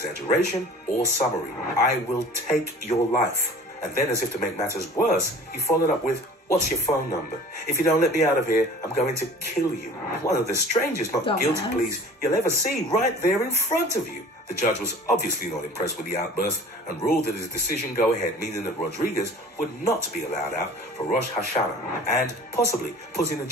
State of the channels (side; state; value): both; normal; correlation 0.44